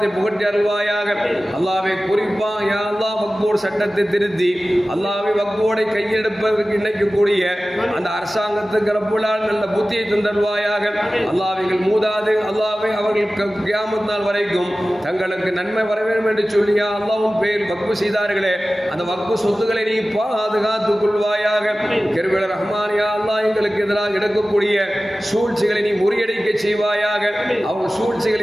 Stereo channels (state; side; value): normal; both; correlation 0.96